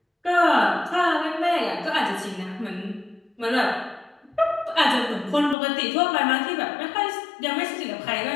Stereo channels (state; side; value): drops out; right; at 5.6 s